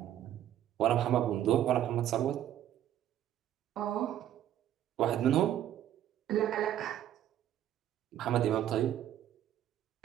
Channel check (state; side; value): quieter; left; 11.5 dB